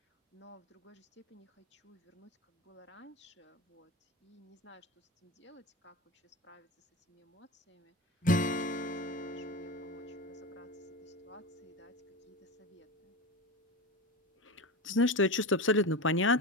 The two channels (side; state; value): both; normal; correlation 0.24